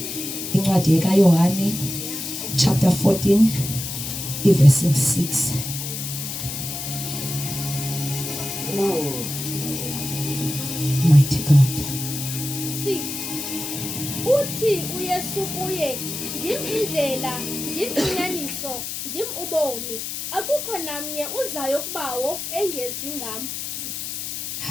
incwadi kaYohane chapter 14 verse 6 mighty God. 6 Uthi uYesu kuye ndim indlela ndim inyaniso ndim ubomi akukho namnye uzayo kubawo engezi ngam.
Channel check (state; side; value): noise; left; hiss, 6 dB below the sound